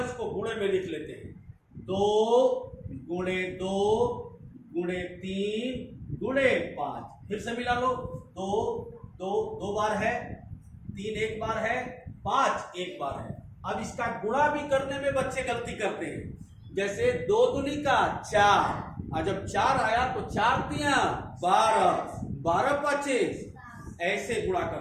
उसको गुणे में लिख लेते हैं, 2 गुणे 2 गुणे 3 गुणे 5। फिर से मिला लो, 2 बार है, 3 एक बार है, 5 एक बार है। अब इसका गुणा भी करने में बच्चे गलती करते हैं, जैसे 2 दूनी का 4, और जब 4 आया तो 4 तिया 12, 12 25, ऐसे गुणा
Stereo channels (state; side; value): identical; both; correlation 1.00